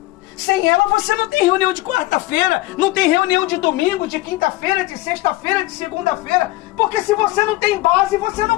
Sem ela você não tem reunião de quarta-feira, não tem reunião de domingo, de quinta-feira, de sexta-feira, de segunda-feira. Porque se você não tem base, você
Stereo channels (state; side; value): quieter; right; 18.4 dB